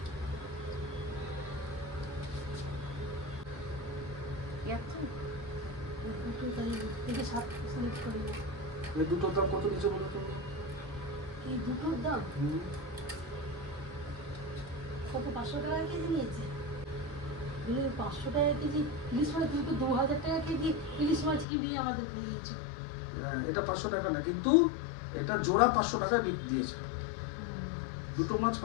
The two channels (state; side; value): drops out; right; at 21.5 s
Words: দুটোর দাম কত নিচে বলো তো? এই দুটোর দাম কত? 500 টাকা কেজি নিয়েছে। 500 টাকা কেজি ইলিশ মাছ, তুমি তো 2000 টাকা কেজি ইলিশ মাছ কিনে আমাদের খাইয়েছো। এটা 500 টাকা না, কিন্তু এটা জোড়া 500 টাকায় বিক্রি দিয়েছে। দুটো মাছ